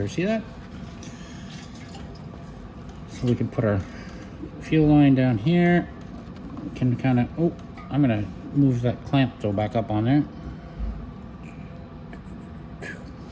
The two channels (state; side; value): identical; both; correlation 1.00